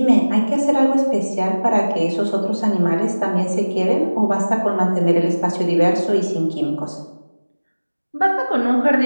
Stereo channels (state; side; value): inverted; both; correlation -1.00